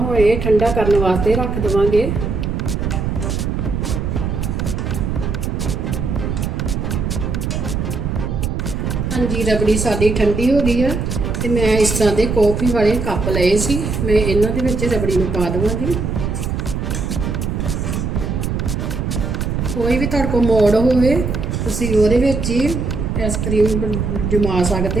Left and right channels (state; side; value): noise; right; rumble, 2 dB below the sound